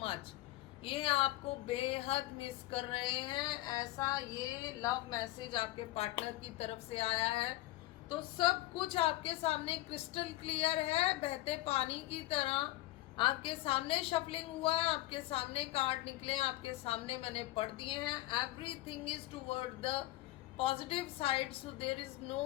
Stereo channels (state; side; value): quieter; right; 17.8 dB